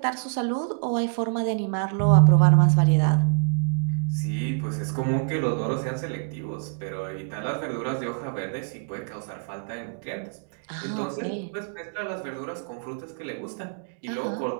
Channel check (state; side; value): silent; left; digital silence